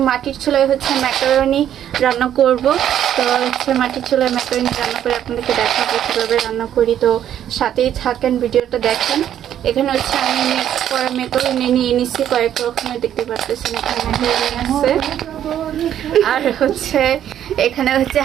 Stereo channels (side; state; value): left; quieter; 10.5 dB